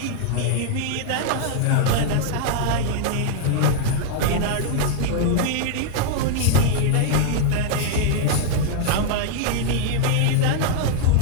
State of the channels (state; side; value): different; both; correlation -0.01